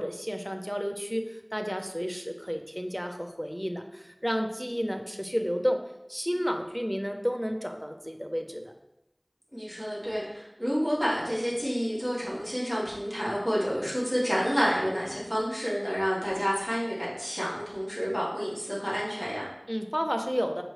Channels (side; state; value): both; identical; correlation 1.00